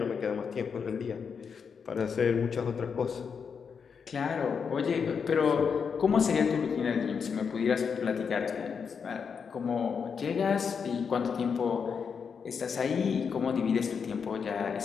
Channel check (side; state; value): right; quieter; 6.2 dB